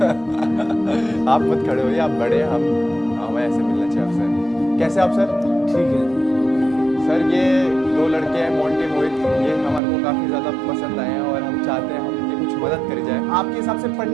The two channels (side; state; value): left; drops out; at 9.8 s